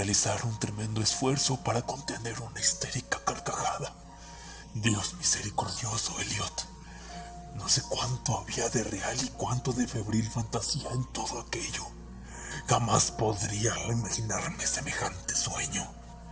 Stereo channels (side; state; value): both; identical; correlation 1.00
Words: un tremendo esfuerzo para contener una histérica carcajada. Dios misericordioso, Elliot. No sé cuánto había de real y cuánto de febril fantasía en todo aquello. Jamás podría imaginarme semejante sueño.